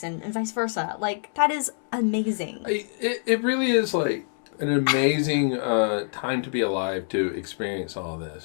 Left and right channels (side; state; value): right; silent; 61 dB below the other